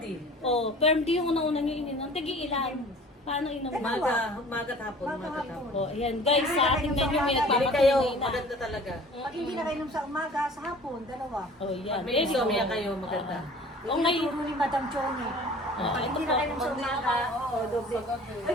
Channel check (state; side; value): normal; both; correlation 0.46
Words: O, Perm D yung una nyo ininom. Tagi ilan? Paano inom? Magat hapon. O, ayan. Guys, sa ating menu may Pili kayo, nagpapatunay na. maganda talaga. Pag hindi na kayo sa umaga, sa hapon, dalawa. O, yan. Pag may insomnia kayo, maganda. O, ngayon. Tinuturo ni Madam Choni. Pag ito hindi po. na kayo sa umaga, doble. Ay,